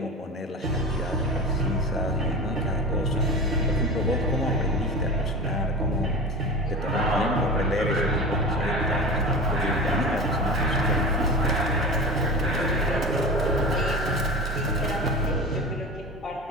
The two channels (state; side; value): normal; both; correlation 0.30